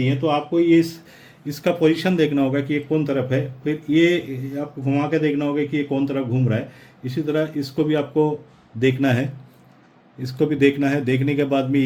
तो आपको ये इसका पोजीशन देखना होगा कि ये कौन तरफ है, फिर ये आपको घुमा के देखना होगा कि ये कौन तरफ घूम रहा है। इसी तरह इसको भी आपको देखना है, इसको भी देखना है। देखने के बाद में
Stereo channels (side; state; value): both; identical; correlation 1.00